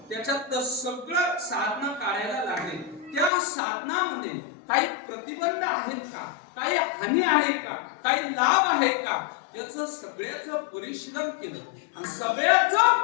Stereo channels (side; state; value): right; drops out; at 3.3 s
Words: त्याच्यात सगळं साधना काढायला लागले. त्या साधनामध्ये काही प्रतिबंध आहेत का, काही हानी आहे का, काही लाभ आहे का, याचं सगळ्याचं परिशीलन केलं. आणि